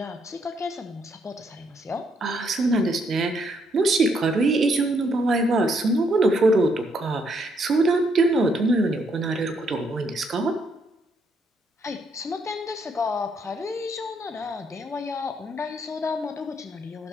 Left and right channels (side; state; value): both; normal; correlation 0.73